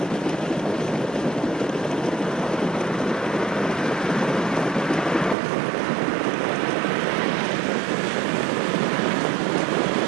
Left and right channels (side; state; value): left; drops out; at 5.4 s